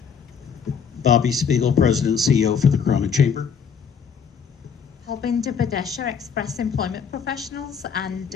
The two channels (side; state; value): right; quieter; 6.6 dB